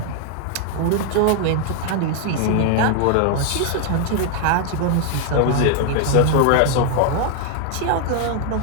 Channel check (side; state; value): both; different; correlation 0.00